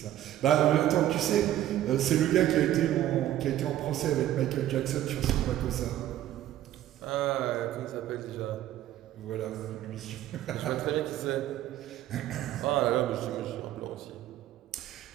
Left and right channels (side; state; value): left; quieter; 13.0 dB